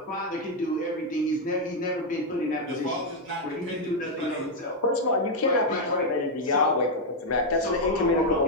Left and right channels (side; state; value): both; normal; correlation 0.01